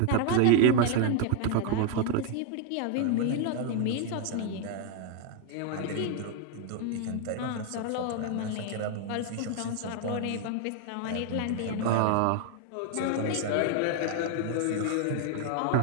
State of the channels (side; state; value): both; different; correlation 0.00